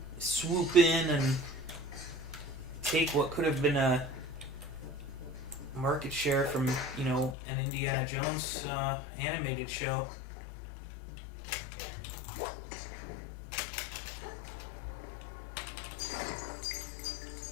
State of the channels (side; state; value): right; drops out; at 7.4 s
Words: swoop in and take what could have been a market share from an Indiana Jones animated show.